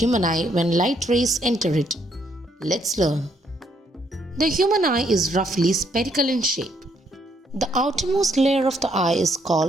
eye when light rays enter it? Let's learn. The human eye is roughly spherical in shape. The outermost layer of the eye is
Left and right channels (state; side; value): normal; both; correlation 0.71